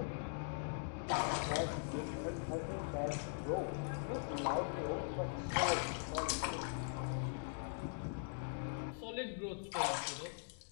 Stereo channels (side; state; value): right; silent; digital silence